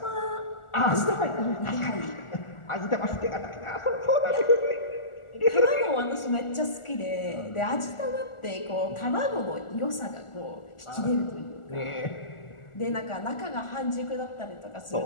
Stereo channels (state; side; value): late; right; 1.4 ms